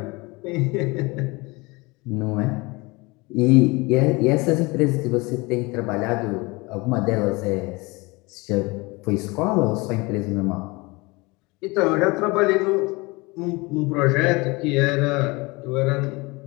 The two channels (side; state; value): right; quieter; 24.8 dB